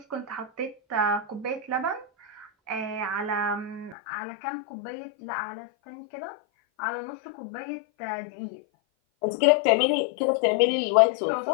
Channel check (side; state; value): right; drops out; at 4.0 s